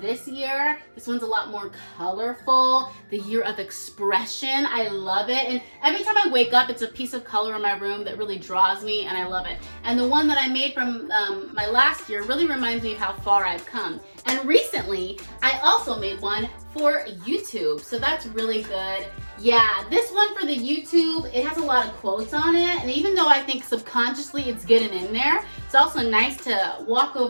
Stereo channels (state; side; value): inverted; both; correlation -1.00